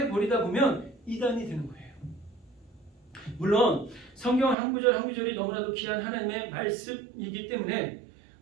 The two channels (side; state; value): left; drops out; at 4.5 s